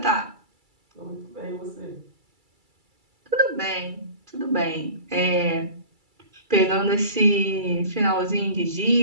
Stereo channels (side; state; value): left; late; 2.3 ms